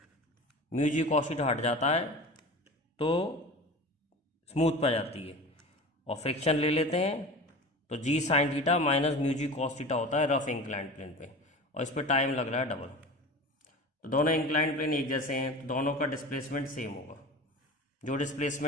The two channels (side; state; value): both; normal; correlation 0.34